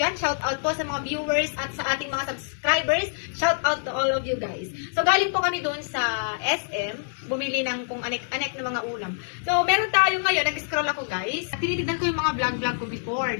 Shout out po sa mga viewers at sa ating mga subscribers. Shout out to all of you guys. So galing po kami doon sa SM, bumili ng kung anek-anek na mga ulam. So meron tayo ngayon, nag-scroll ako guys. Tinitignan ko yung mga vlog ko before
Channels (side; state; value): right; silent; digital silence